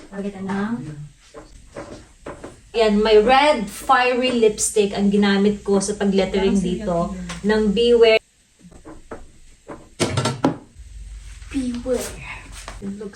Yan, may red fiery lipstick ang ginamit ko sa pag-lettering dito ng Beware. Beware.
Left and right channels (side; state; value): both; identical; correlation 1.00